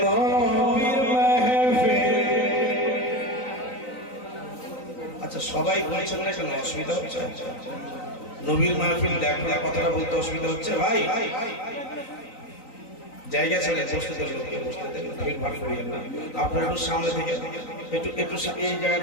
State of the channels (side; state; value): right; late; 3.9 ms